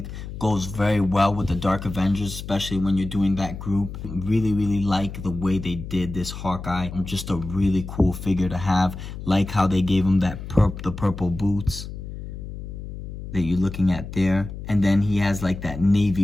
goes very well with the Dark Avengers, especially when you're doing that group. Really, really like the way they did this Hawkeye. Just a really cool figure to have. Like how they gave him that the purple boots that you're looking at there. And then he has like that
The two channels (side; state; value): left; noise; hum, 10 dB below the sound